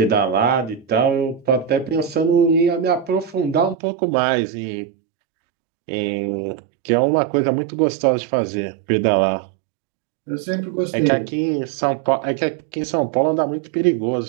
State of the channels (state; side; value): drops out; left; at 3.8 s